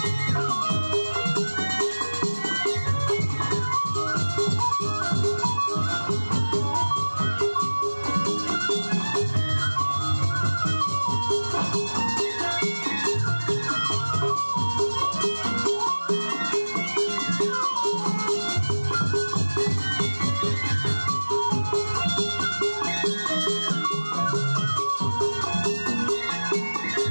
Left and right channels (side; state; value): both; inverted; correlation -1.00